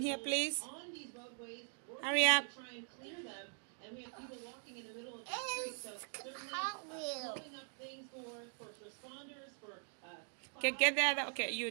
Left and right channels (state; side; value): silent; left; 50 dB below the other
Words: here, please? Hurry up. And we have people walking in the middle of the street, so certainly blowing up things for first responders, for Okay, get the other. Okay,